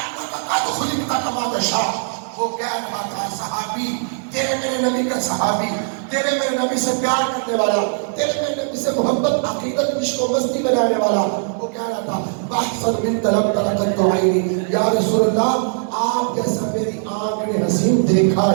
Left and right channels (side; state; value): left; silent; digital silence